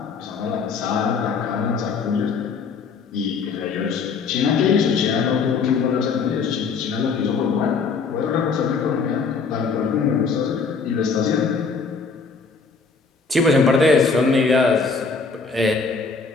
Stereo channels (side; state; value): right; quieter; 5.0 dB